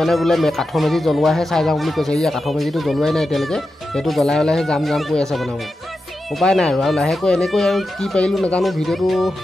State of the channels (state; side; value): normal; both; correlation 0.90